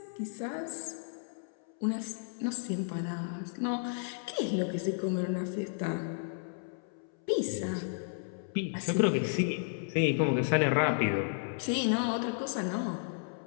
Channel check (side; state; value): right; silent; 56 dB below the other